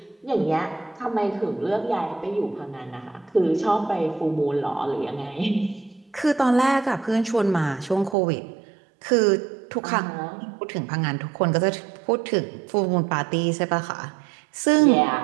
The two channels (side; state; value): left; drops out; at 8.2 s